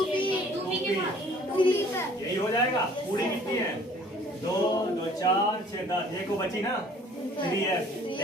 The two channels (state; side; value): normal; both; correlation 0.54